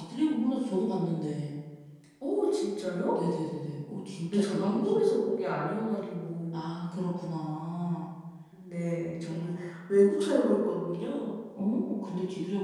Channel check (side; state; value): both; identical; correlation 1.00